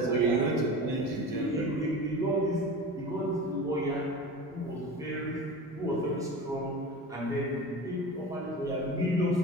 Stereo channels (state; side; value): normal; both; correlation 0.32